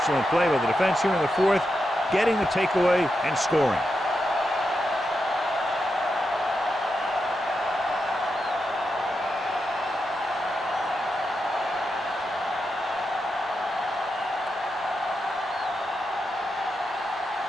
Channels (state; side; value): normal; both; correlation 0.86